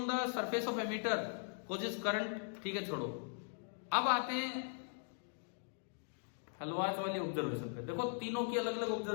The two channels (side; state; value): right; silent; digital silence